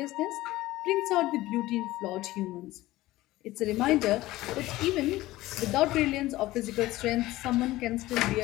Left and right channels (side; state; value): right; quieter; 17.3 dB